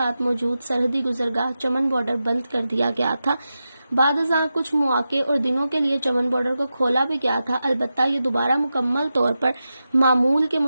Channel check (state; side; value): inverted; both; correlation -0.91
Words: موجود سرحدی گزرگاہ چمن بارڈر بند کر دیا گیا تھا۔ بعد ازاں کچھ مواقع اور دنوں کے لیے چمن بارڈر کو کھولا بھی گیا تھا، البتہ یہ دوبارہ مکمل طور پر معمول کے